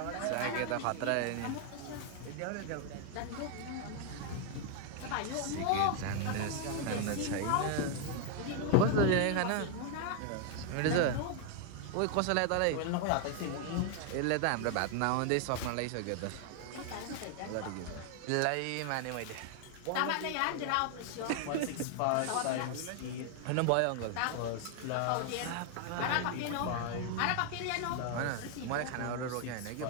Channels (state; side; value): different; both; correlation 0.00